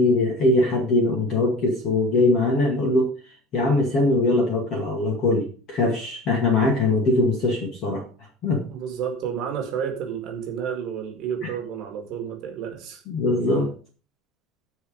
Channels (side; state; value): both; normal; correlation 0.36